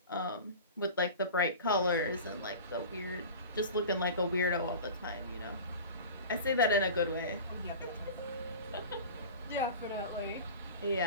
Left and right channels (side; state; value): both; inverted; correlation -0.35